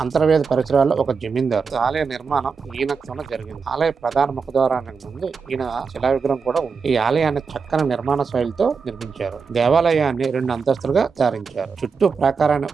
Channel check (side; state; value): left; quieter; 5.4 dB